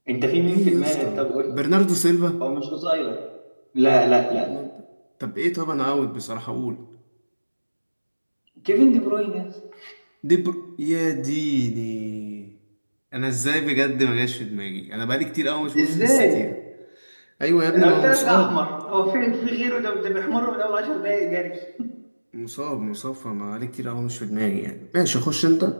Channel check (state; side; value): inverted; both; correlation -1.00